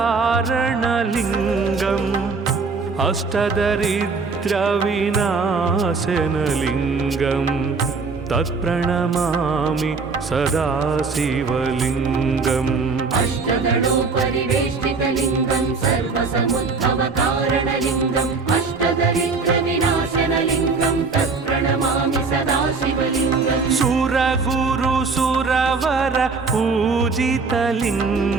अष्टदरिद्रविनाशनलिङ्गं तत्प्रणमामि सदा शिवलिङ्गम् अष्टदलोपरिवेष्टितलिङ्गं सर्वसमुद्भवकारणलिङ्गम् अष्टदरिद्रविनाशनलिङ्गं तत्प्रणमामि सदा शिवलिङ्गम् सुरगुरुसुरवर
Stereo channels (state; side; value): quieter; left; 4.4 dB